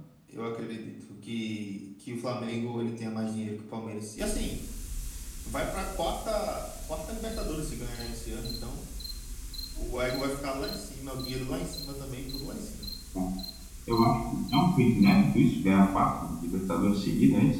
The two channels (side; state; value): both; identical; correlation 1.00